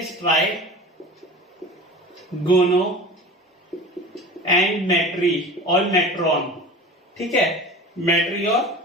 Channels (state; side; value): normal; both; correlation 0.36